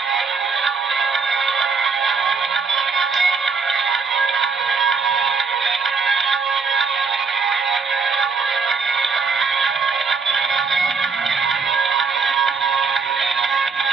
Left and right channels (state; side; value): quieter; left; 5.0 dB